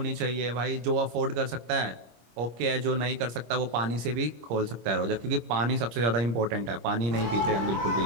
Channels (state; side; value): late; left; 25 ms